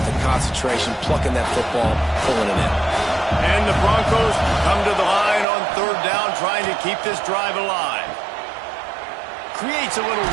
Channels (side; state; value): left; drops out; at 5.5 s